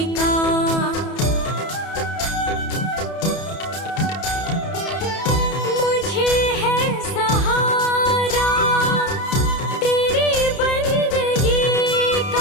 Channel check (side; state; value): right; late; 31 ms